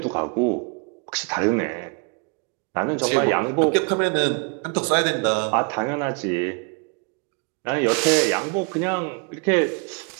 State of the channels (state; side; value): quieter; left; 35.6 dB